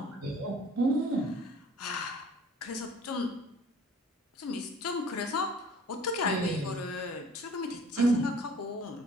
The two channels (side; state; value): both; normal; correlation 0.51